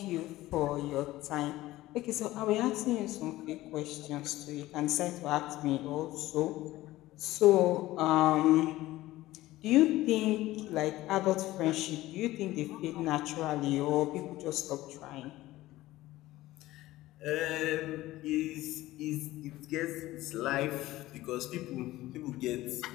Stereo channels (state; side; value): quieter; right; 16.8 dB